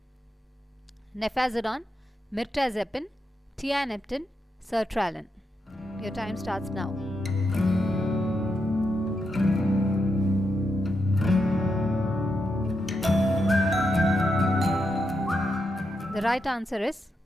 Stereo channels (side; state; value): both; normal; correlation 0.84